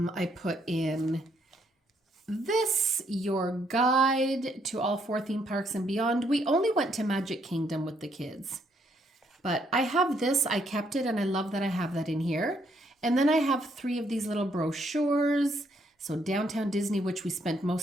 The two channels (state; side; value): normal; both; correlation 0.72